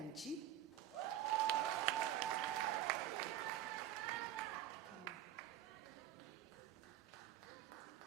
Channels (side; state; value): left; quieter; 12.4 dB